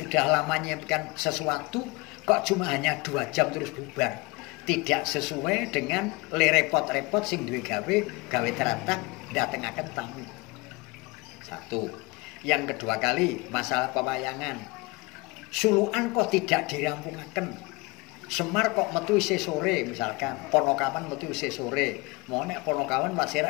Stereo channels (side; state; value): right; quieter; 24.8 dB